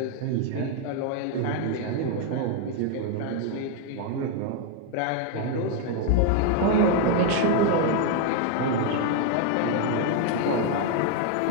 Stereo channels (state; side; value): different; both; correlation 0.01